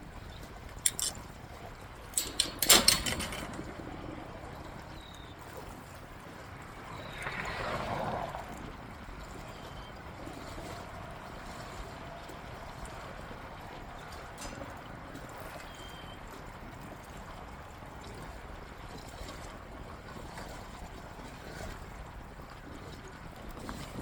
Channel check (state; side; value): identical; both; correlation 1.00